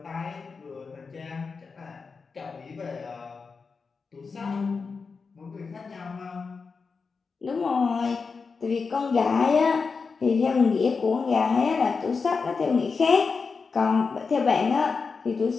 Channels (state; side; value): quieter; right; 4.9 dB